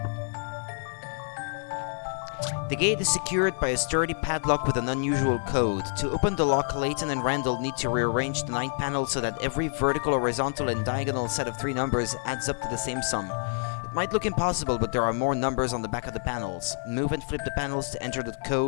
The gate is secured by a sturdy padlock with an unusual code. To open the lock, Layton and Randall need to rearrange the 9 panels so that every vertical, horizontal, and diagonal set of 3 numbers adds up to the same sum. It might look impossible, but there are more numbers on the back of the panels. Move and flip the panels to enter the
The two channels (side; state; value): right; silent; 59 dB below the other